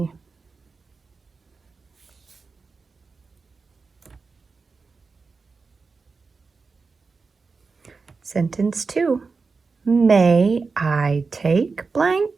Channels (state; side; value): quieter; left; 4.5 dB